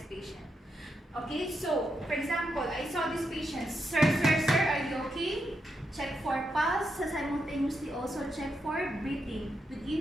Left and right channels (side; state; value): both; normal; correlation 0.83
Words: patient. Okay, so for example, I saw this patient. Sir, are you okay? Check for pulse, simultaneously also check for breathing